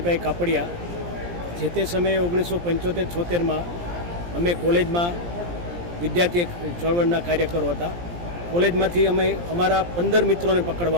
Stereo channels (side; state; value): left; late; 17 ms